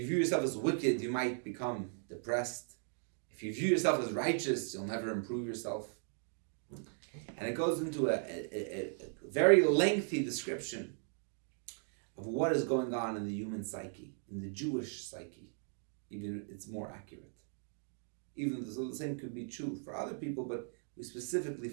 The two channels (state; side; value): silent; left; 53 dB below the other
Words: view yourself as wicked, you might become depressed. If you view yourself as righteous, you'll never improve yourself. And it goes into a very lengthy description of what is going on in the human psyche, in the Jewish psyche. Even it's more accurate. Even though the same could be true for other people, but we specifically